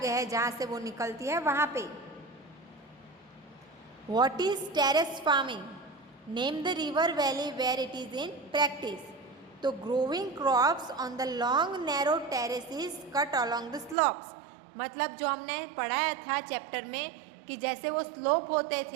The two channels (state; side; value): drops out; left; at 14.0 s